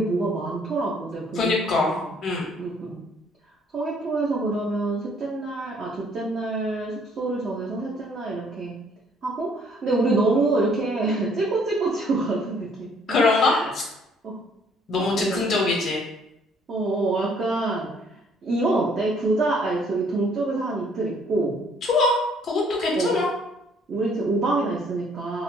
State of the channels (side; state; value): both; normal; correlation 0.62